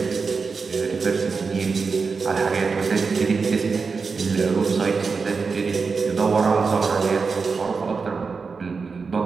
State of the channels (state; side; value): quieter; left; 4.9 dB